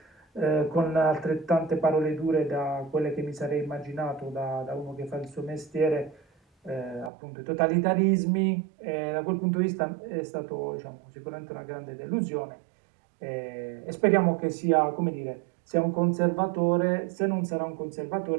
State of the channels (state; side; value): drops out; left; at 7.1 s